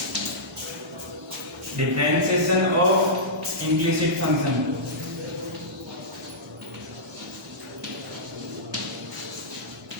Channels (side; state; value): both; normal; correlation -0.15